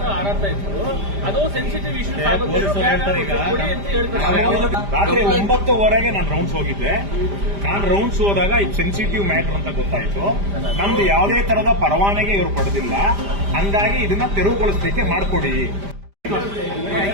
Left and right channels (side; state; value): left; late; 5.0 ms